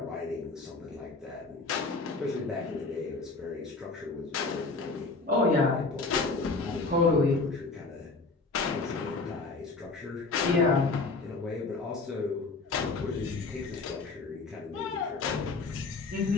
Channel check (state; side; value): quieter; right; 3.8 dB